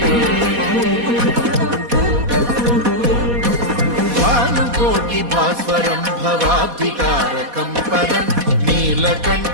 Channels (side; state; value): left; late; 4.2 ms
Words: भास्वरं भवाब्धिकारकं परं